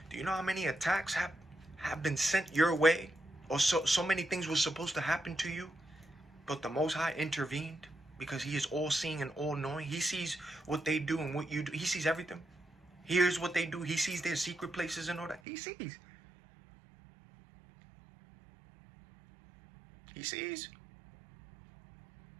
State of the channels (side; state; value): left; drops out; at 15.4 s